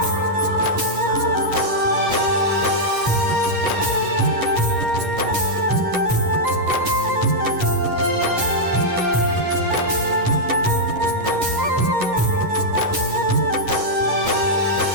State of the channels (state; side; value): late; left; 11 ms